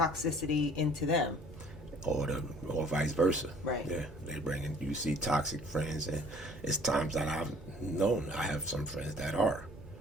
into them. Or vice versa. Right. Yeah, you see toxic friends, and it's times that I've known, I have some friends that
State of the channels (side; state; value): both; normal; correlation 0.53